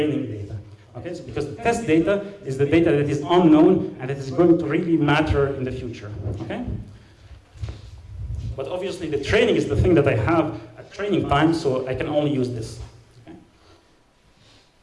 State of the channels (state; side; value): identical; both; correlation 1.00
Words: data. Okay? So because the test data is the data that is unknown and that is going to really matter in the future. Okay? But obviously the training is the thing that I have at training time, so I can only use this.